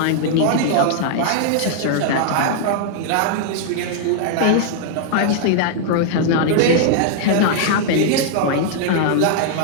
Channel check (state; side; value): different; both; correlation -0.01